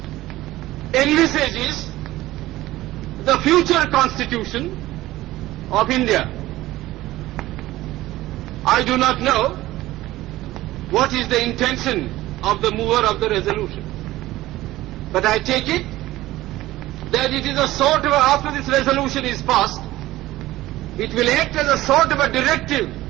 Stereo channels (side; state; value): left; quieter; 16.6 dB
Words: envisages the future constitution of India. I do not know what is the intention of the mover of the resolution, but I take it that it is a sort of, after this resolution is passed, it will act as a sort of a directive